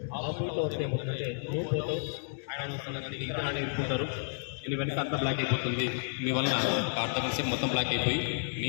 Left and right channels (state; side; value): silent; right; digital silence